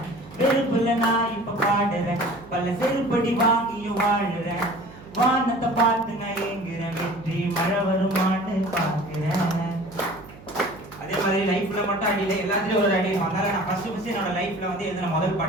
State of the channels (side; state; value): right; noise; hum, 19 dB below the sound